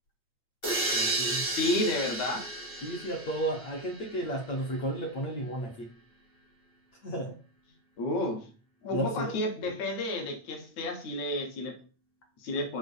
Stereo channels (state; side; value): late; right; 8.7 ms